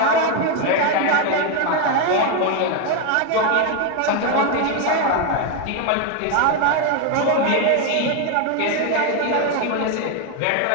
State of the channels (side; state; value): both; different; correlation 0.01